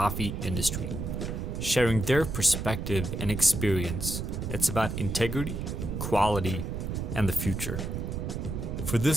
industry, sharing their perspective and experience. It's about integrity, quality, and the future. For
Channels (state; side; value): noise; right; rumble, 4 dB below the sound